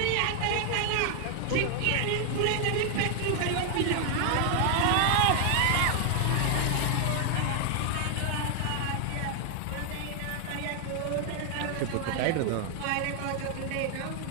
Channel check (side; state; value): both; different; correlation 0.00